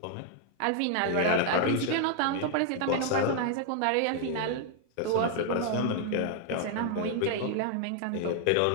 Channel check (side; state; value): both; different; correlation 0.00